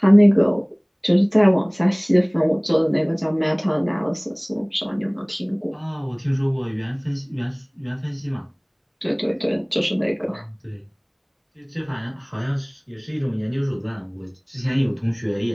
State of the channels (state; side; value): identical; both; correlation 1.00